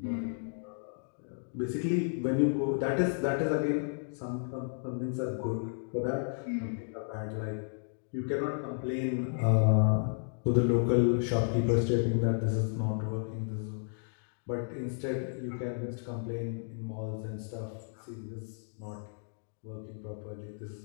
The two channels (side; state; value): right; silent; digital silence